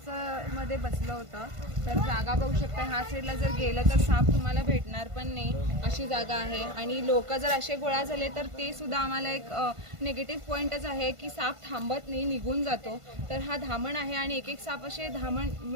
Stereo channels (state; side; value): late; left; 1.5 ms